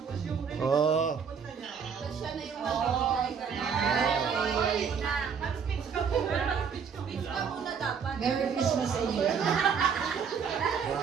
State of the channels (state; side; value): quieter; left; 6.6 dB